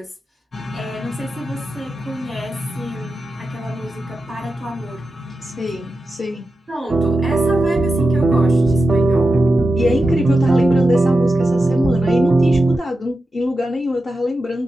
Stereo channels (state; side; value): normal; both; correlation 0.90